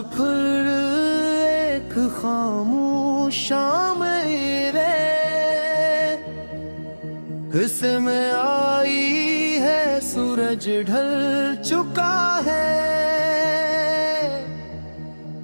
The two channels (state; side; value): inverted; both; correlation -1.00